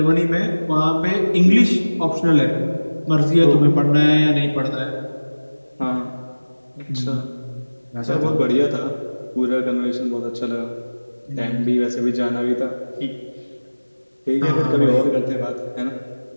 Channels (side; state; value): both; inverted; correlation -1.00